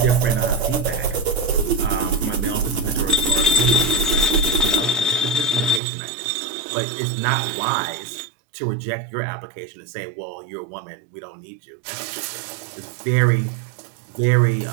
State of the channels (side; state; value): left; drops out; at 5.8 s